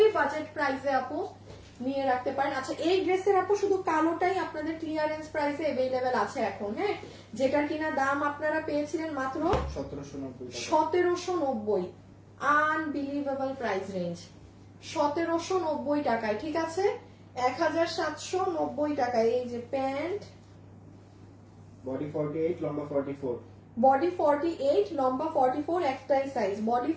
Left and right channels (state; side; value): identical; both; correlation 1.00